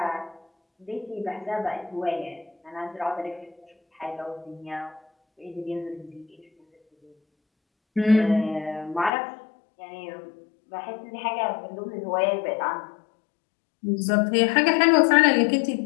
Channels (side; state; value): right; drops out; at 9.1 s